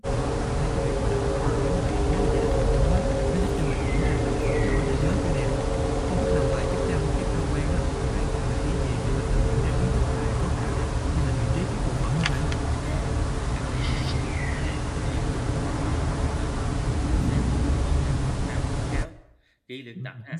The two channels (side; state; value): both; identical; correlation 1.00